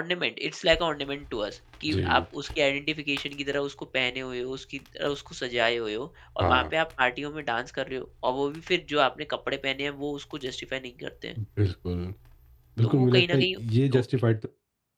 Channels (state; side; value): identical; both; correlation 1.00